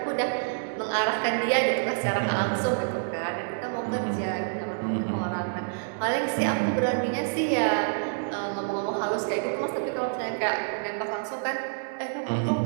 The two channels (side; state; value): left; silent; digital silence